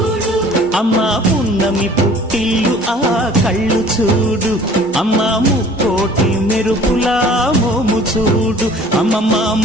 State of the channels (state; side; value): normal; both; correlation 0.50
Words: అమ్మా పున్నమి పుట్టిల్లు ఆ కళ్ళు చూడు, అమ్మా ముక్కోటి మెరుపులా మోము చూడు, అమ్మమ్మ